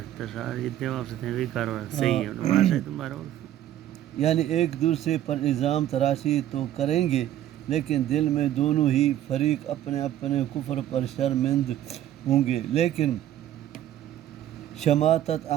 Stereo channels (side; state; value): left; quieter; 12.1 dB